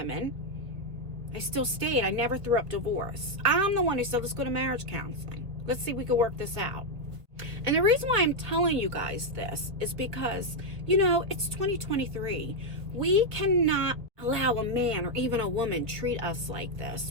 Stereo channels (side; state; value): left; late; 2.0 ms